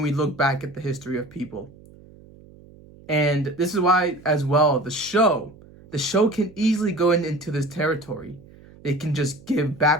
we look back at the history of people. And this is why, as well, the show can easily go into this territory. They can just give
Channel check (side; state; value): right; noise; hum, 23 dB below the sound